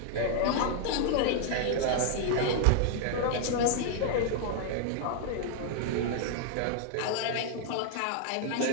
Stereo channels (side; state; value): both; different; correlation 0.00